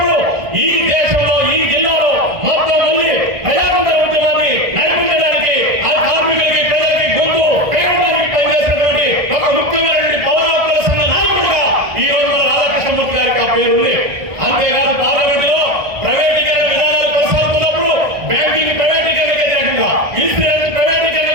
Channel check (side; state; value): left; late; 1.6 ms